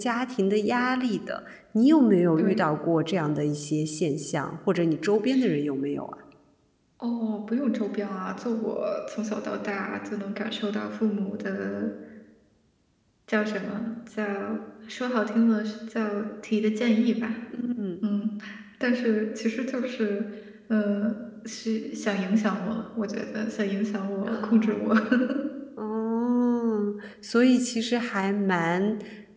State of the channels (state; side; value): identical; both; correlation 1.00